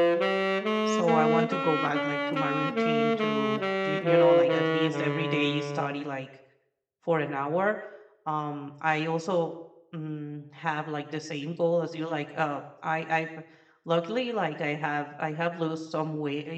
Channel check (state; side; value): identical; both; correlation 1.00